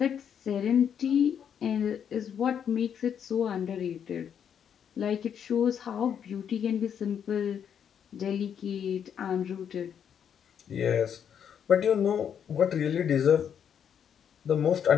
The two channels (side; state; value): right; quieter; 8.3 dB